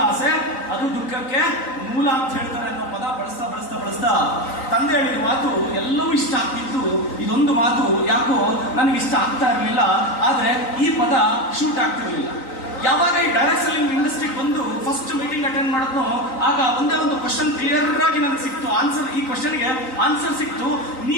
ಆಸೆ ಅದು ದುಃಖಕ್ಕೆ ಮೂಲ ಅಂತ ಹೇಳ್ತಾರೆ ಅನ್ನೋ ಪದ ಬಳಸ್ತಾ ಬಳಸ್ತಾ ಬಳಸ್ತಾ ತಂದೆ ಹೇಳಿದ ಮಾತು ಎಲ್ಲವೂ ಇಷ್ಟ ಆಗ್ತಿತ್ತು. ಇದೊಂದು ಮಾತು ಯಾಕೋ ನನಗೆ ಇಷ್ಟ ಆಗ್ತಾ ಇರಲಿಲ್ಲ, ಆದ್ರೆ ಈ ಪದ ಶೂಟ್ ಆಗ್ತಿರ್ಲಿಲ್ಲ. ಯಾವಾಗ ಈ ಡೈರೆಕ್ಟ್ ಸೆಲ್ಲಿಂಗ್ ಇಂಡಸ್ಟ್ರಿಗೆ ಬಂದು ಫಸ್ಟ್ ಮೀಟಿಂಗ್ ಅಟೆಂಡ್ ಮಾಡಿದ್ನೋ, ಆಗ ಒಂದೇ ಒಂದು ಕ್ವಶನ್ ಕ್ಲಿಯರ್ ಆಗಿ ನನಗೆ ಸಿಕ್ತು. ಆನ್ಸರ್, ಈ ಕ್ವಶನ್ಗೆ ಆನ್ಸರ್ ಸಿಕ್ತು.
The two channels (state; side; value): late; right; 3.9 ms